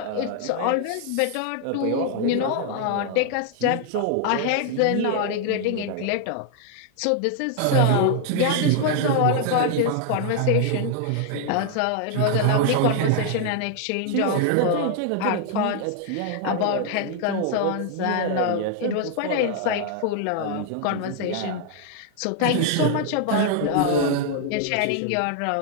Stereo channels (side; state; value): both; different; correlation 0.00